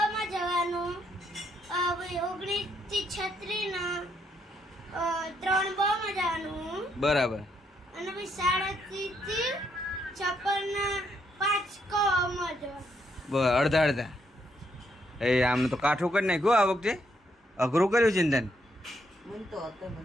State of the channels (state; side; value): normal; both; correlation 0.75